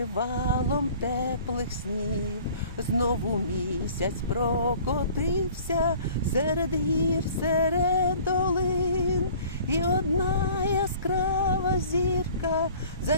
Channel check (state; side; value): inverted; both; correlation -0.49